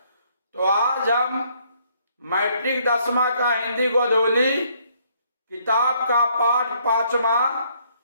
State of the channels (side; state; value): both; inverted; correlation -0.67